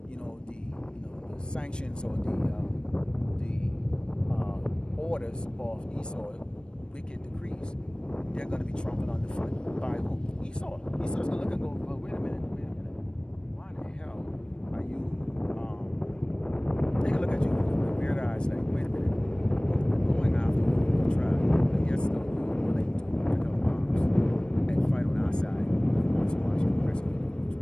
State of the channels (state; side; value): late; right; 0.053 ms